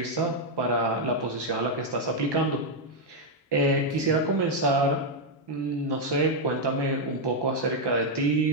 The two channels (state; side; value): normal; both; correlation 0.00